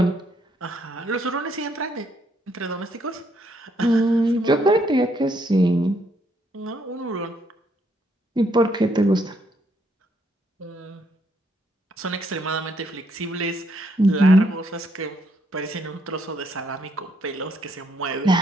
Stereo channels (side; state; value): both; normal; correlation 0.72